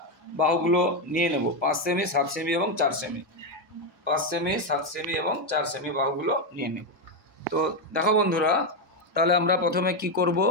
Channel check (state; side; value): normal; both; correlation 0.07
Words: বাহুগুলো নিয়ে নেব। 5 সেমি, 7 সেমি এবং 4 সেমি, 5 সেমি, 7 সেমি এবং 4 সেমি বাহুগুলো নিয়ে নেব। তো দেখো বন্ধুরা, তাহলে আমরা প্রথমে কি করব,